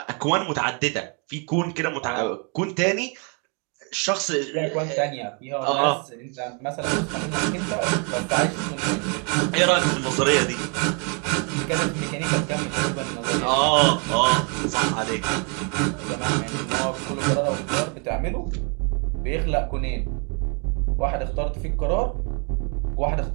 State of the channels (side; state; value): left; quieter; 36.8 dB